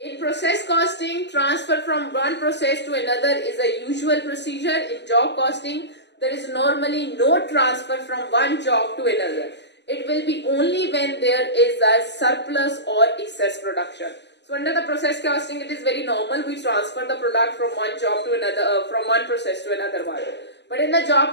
In process costing, transfer from one process to another is a usual procedure. In job costing, there is normally no transfer from one job to another. It will be only when there is a surplus or excess production. So under the process costing, it is very normal we transfer the product from one job to another, from one process to another one. But in the job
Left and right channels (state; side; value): late; right; 0.50 ms